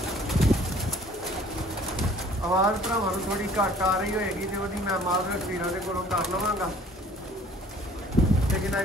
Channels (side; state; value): both; normal; correlation 0.53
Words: आवाज़ भरावां नूं थोड़ी घट आ रही होएगी तो वही मैं माजरत वीरां दे कोलों कर लवांगा, लेकिन